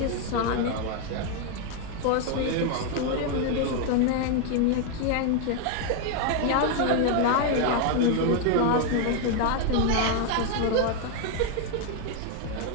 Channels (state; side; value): different; both; correlation 0.01